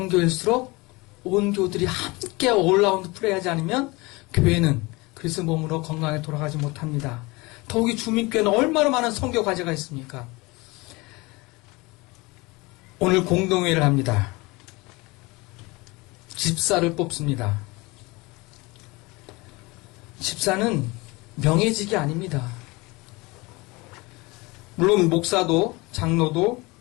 교회일수록 온 교들이 함께 올라운드 플레이하지 않으면 교회는 그리스도 몸으로 건강하게 돌아가지 못합니다. 더욱이 주민교회는 얼마나 많은 선교 과제가 있습니까? 오늘 공동회의를 합니다. 집사를 뽑습니다. 집사는 명예직이 아닙니다. 물론 목사도 장로도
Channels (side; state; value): right; quieter; 24.0 dB